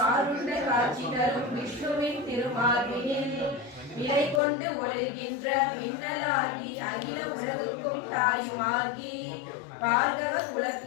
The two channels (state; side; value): drops out; right; at 4.4 s